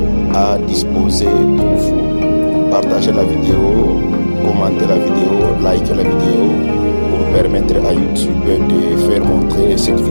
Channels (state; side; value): inverted; both; correlation -1.00